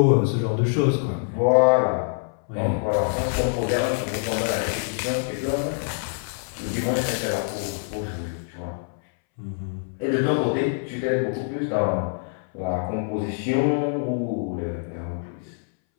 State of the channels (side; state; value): right; silent; 61 dB below the other